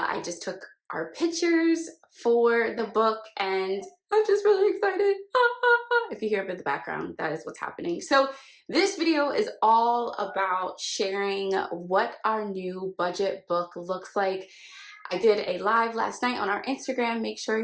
just took our pictures for the book and I'm just really excited. If you hear it in the background, that is what's happening. So this video is all about sharing what our new budget book looks like. I did a live last night on our Instagram. Make sure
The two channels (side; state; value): both; identical; correlation 1.00